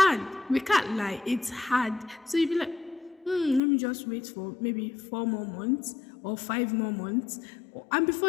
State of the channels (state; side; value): drops out; right; at 3.6 s